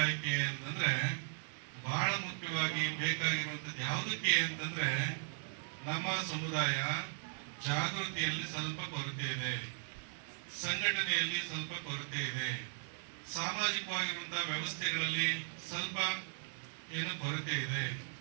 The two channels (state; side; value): silent; left; digital silence